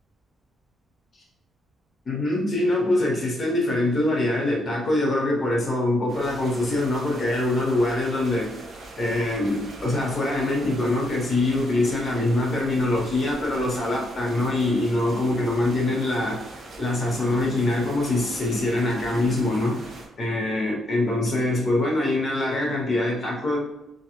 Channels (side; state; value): both; normal; correlation 0.76